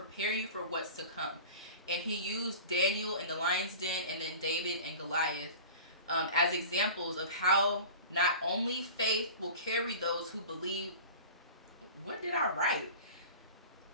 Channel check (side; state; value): both; inverted; correlation -0.37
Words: you for what's to come. And he used Daniel in the lion's den, and then David and Goliath as examples of how not only faith will carry those who believe. What did I write?